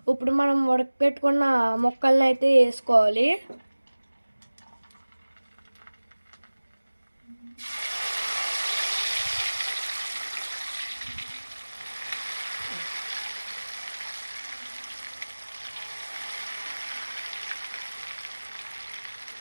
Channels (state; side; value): inverted; both; correlation -1.00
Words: ఇప్పుడు మనం ఉడకపెట్టుకున్న ముక్కల్ని అయితే వేసుకోవాలి.